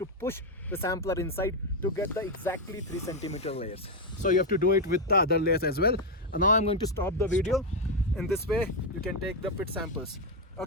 push the sampler inside to get the exactly 3 centimeter layers. So you have to do it with the other layers as well. And now I'm going to stop the video. In this way you can take the pit samples.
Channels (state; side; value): normal; both; correlation 0.04